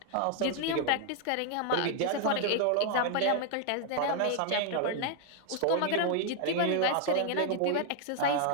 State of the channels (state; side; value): different; both; correlation 0.00